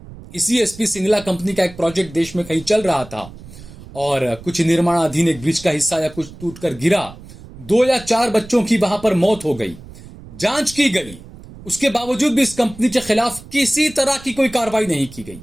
इसी एसपी सिंगला कंपनी का एक प्रोजेक्ट देश में कहीं चल रहा था और कुछ निर्माणाधीन एक ब्रिज का हिस्सा या कुछ टूटकर गिरा, 2 या 4 बच्चों की वहां पर मौत हो गई। जांच की गई, उसके बावजूद भी इस कंपनी के खिलाफ किसी तरह की कोई कार्रवाई नहीं की गई।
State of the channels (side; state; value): right; noise; rumble, 18 dB below the sound